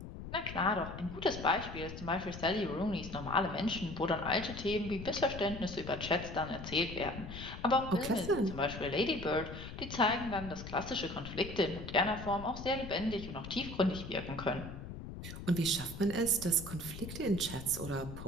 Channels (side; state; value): left; noise; rumble, 10 dB below the sound